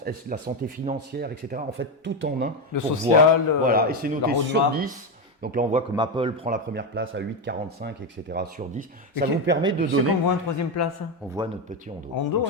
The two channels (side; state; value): both; normal; correlation 0.10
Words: la santé financière, etc. En fait, tout en un. Le social, voilà, et c'est noté sur 10. Donc là, on voit que Maple prend la première place à 8,45, etc. sur 10. Ça vous permet de donner… C'est qu'on voit en 3e place. On voit notre petit Hondo. Donc